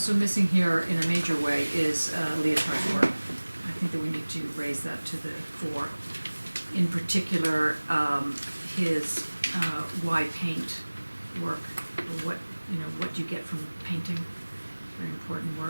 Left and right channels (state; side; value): inverted; both; correlation -1.00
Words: missing here in a major way is Leotard's work. I think that we need to raise that to the fore. In particular, his why paint work, or what do you get from painting? Very important